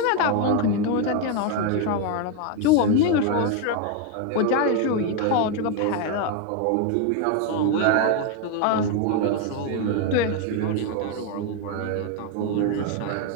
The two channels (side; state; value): both; different; correlation 0.01